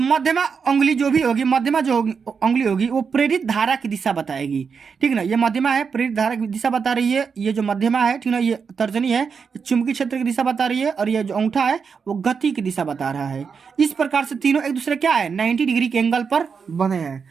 मध्यमा अंगुली जो अंगुली होगी वो प्रेरित धारा की दिशा बताएगी, ठीक ना। ये मध्यमा है, प्रेरित धारा की दिशा बता रही है, ये जो मध्यमा है, ठीक ना, ये तर्जनी है, ये चुंबकीय क्षेत्र की दिशा बता रही है, और ये जो अंगूठा है वो गति की दिशा बता रहा है। इस प्रकार से तीनों एक दूसरे क्या है, 90 डिग्री के एंगल पर बने हैं,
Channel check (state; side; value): quieter; left; 5.9 dB